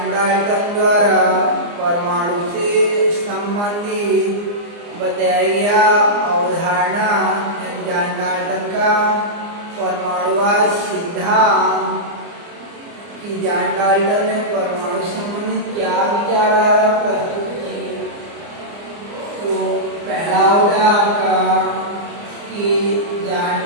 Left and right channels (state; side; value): late; left; 29 ms